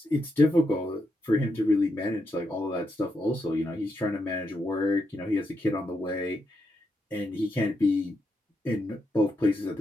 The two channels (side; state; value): both; normal; correlation 0.82